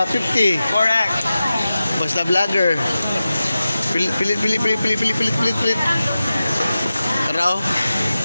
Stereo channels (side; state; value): both; inverted; correlation -0.94